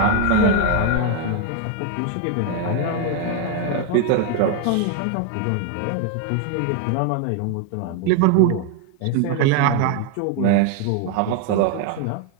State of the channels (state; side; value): different; both; correlation 0.01